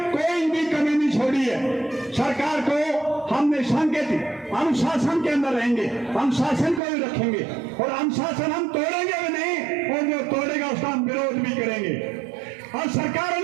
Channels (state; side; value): drops out; left; at 6.8 s